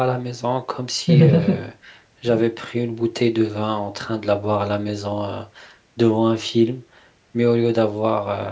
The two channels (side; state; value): both; identical; correlation 1.00